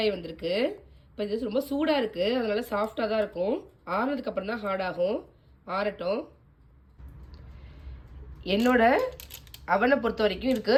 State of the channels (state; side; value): identical; both; correlation 1.00